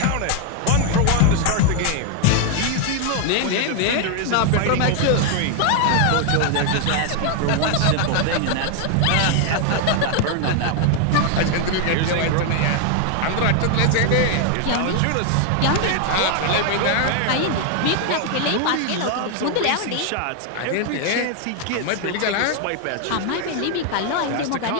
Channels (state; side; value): different; both; correlation 0.00